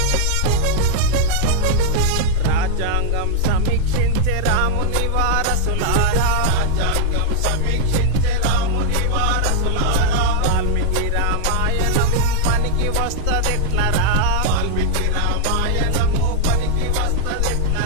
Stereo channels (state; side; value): different; both; correlation 0.00